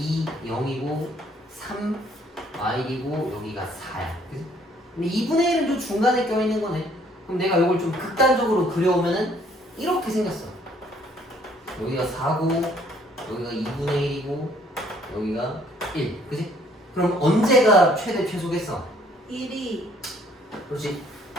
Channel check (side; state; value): both; normal; correlation 0.62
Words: 0이고 3, y이고 여기가 4야. 그치? 근데 2분의 1은 좀 중간에 껴있는 거네. 그럼 내가 이걸 좀 극단적으로 그려오면은 이렇게 생겼어. 여기가 4고 여기가 2분의 1이고 여기가 1. 그치? 그럼 언제가 최대 최소겠어? 1이 그렇지.